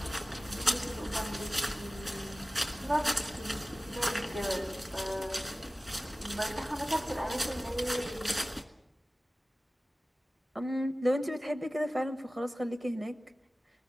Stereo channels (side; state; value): both; normal; correlation 0.97